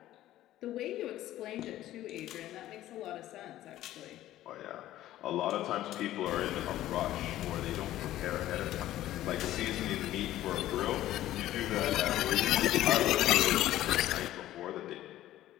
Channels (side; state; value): right; quieter; 14.1 dB